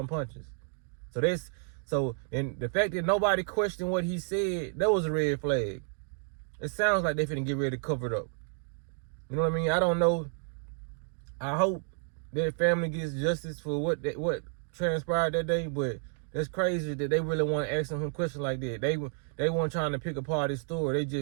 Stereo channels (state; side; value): silent; left; 57 dB below the other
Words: punches. And the fact that nobody questioned what he said, that was a red flag. It sounds like they finna get ready to cover it up. You know what I mean? I don't know. I hope their family gets justice for what transpired that day, but that's crazy that they really want to ask him questions like that. They weren't trying to pick apart his story.